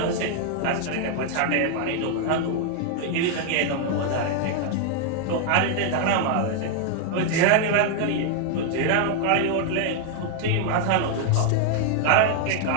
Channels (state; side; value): different; both; correlation 0.00